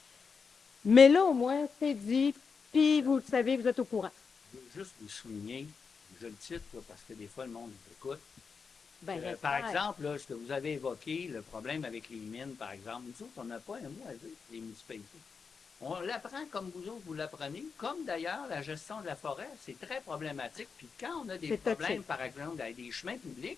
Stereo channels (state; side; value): quieter; right; 5.5 dB